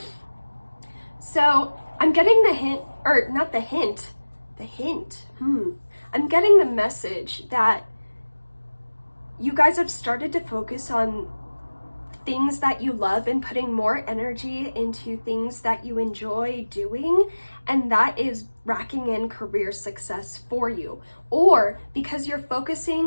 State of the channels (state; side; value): inverted; both; correlation -1.00